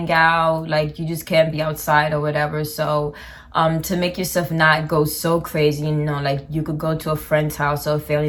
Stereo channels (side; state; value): both; identical; correlation 1.00